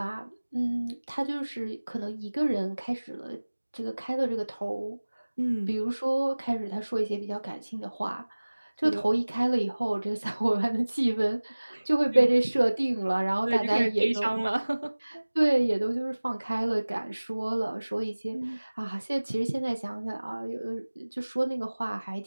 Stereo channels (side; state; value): both; inverted; correlation -1.00